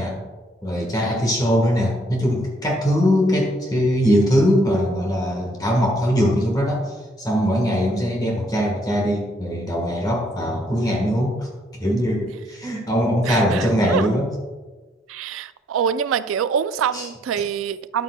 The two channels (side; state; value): both; normal; correlation 0.69